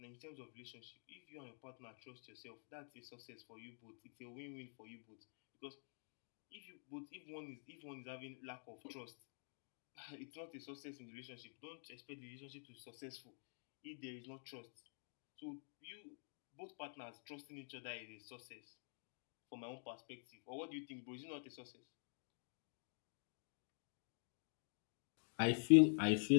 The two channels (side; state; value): right; silent; digital silence